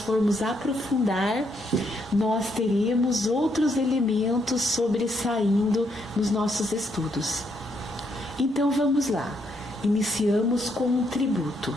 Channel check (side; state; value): both; normal; correlation 0.75